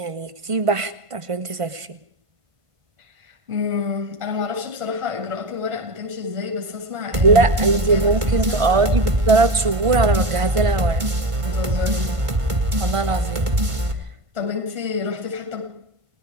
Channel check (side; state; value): left; late; 1.5 ms